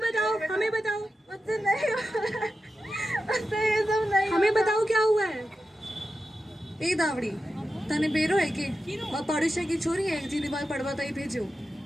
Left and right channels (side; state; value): both; normal; correlation 0.91